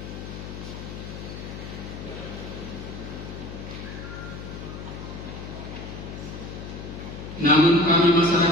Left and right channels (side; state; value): left; noise; hum, 9 dB below the sound